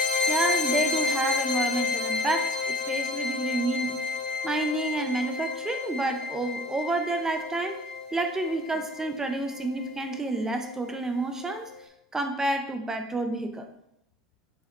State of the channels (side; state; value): both; normal; correlation 0.51